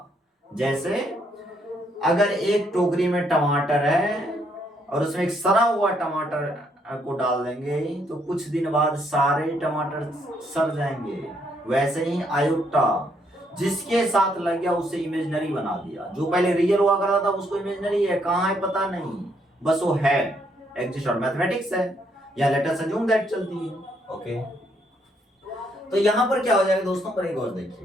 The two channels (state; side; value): normal; both; correlation 0.72